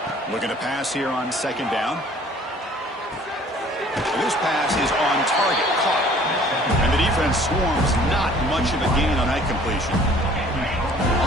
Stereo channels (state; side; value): normal; both; correlation 0.53